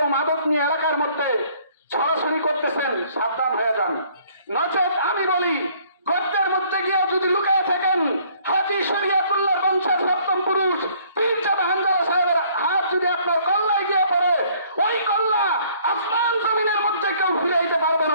মাদক নিয়ে এলাকার মধ্যে ছড়াছড়ি করতেছেন, সাবধান হয়ে যান। নচেত আমি বলি, গর্তের মধ্যে গিয়ে যদি লুকিয়ে থাকেন, হাজী শরিয়তুল্লাহ বংশের সপ্তম পুরুষ পীরজাদা হানজালা সাহেবের হাত যদি আপনার কল্লায় গিয়ে পড়ে, ওই কল্লা আসমান জমিনের মধ্যে কেউ ফিরাইতে পারবে না।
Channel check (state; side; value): inverted; both; correlation -0.60